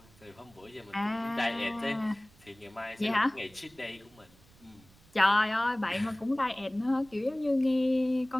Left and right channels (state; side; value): noise; right; rumble, 27 dB below the sound